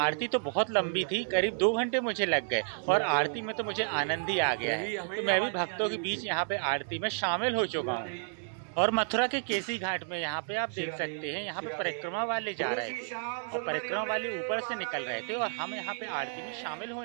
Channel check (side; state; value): left; silent; 57 dB below the other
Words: तो बहुत लंबी थी, करीब 2 घंटे मुझे लग गए और आरती में तो मुझे आनंद ही आ गया है। तो मैं भी भक्तों के बीच यहाँ पे आरती में शामिल हो चुका हूँ। और मथुरा के केसी घाट में यहाँ पे आप देख सकते हैं, यहाँ पे परिक्रमा वाले जा रहे थे और परिक्रमा वाले ऊपर से निकल रहे थे और हम यहाँ पे आरती में शामिल